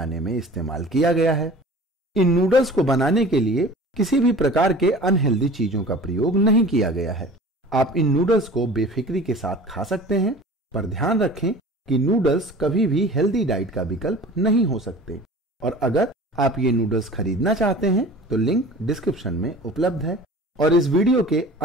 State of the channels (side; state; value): both; normal; correlation 0.42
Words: में इस्तेमाल किया गया है। इन नूडल्स को बनाने के लिए किसी भी प्रकार के अनहेल्दी चीजों का प्रयोग नहीं किया गया है। आप इन नूडल्स को बेफिक्री के साथ खा सकते हैं, पर ध्यान रखें कि नूडल्स कभी भी हेल्दी डाइट का विकल्प नहीं हो सकते। और अगर आप ये नूडल्स खरीदना चाहते हैं तो लिंक डिस्क्रिप्शन में उपलब्ध है। और इस वीडियो के